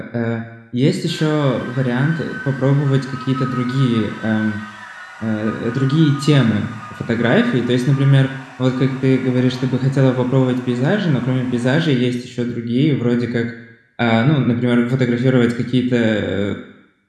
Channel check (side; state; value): both; identical; correlation 1.00